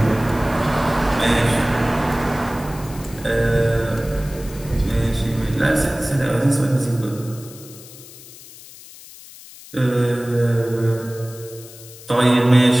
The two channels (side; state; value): left; noise; hiss, 18 dB below the sound